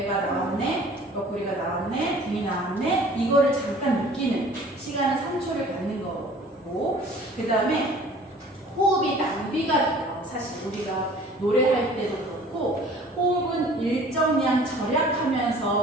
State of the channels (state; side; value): normal; both; correlation 0.49